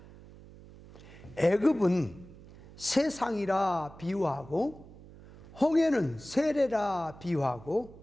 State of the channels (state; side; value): noise; right; hum, 19 dB below the sound